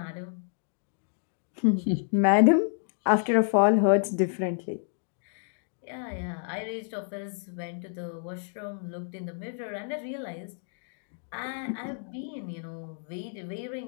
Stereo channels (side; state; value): right; silent; digital silence